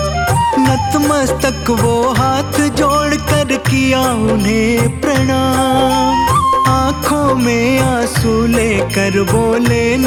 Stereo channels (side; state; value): both; identical; correlation 1.00